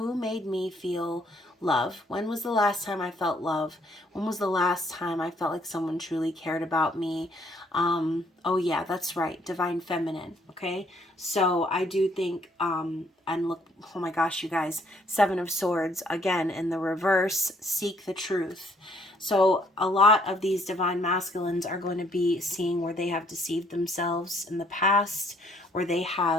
made me feel love? When was the last time I felt love? When was the last time I felt like someone truly cared about me? Oh yeah, that's right, Divine Feminine, okay? So I do think, and look, oh my gosh, you guys, Seven of Swords, again, in the reverse, seek the truth. So a lot of these Divine Masculines are going to be seeing where they have deceived themselves in the past, where they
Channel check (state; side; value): normal; both; correlation 0.65